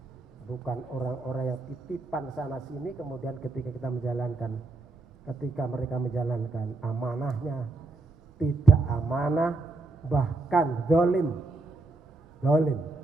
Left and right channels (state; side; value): quieter; left; 3.4 dB